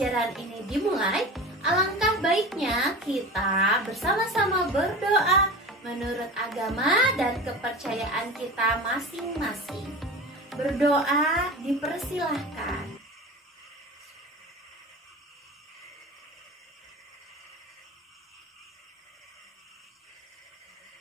ini dimulai, alangkah baiknya kita bersama-sama berdoa menurut agama dan kepercayaan kita masing-masing. Berdoa dipersilahkan.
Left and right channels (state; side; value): normal; both; correlation 0.32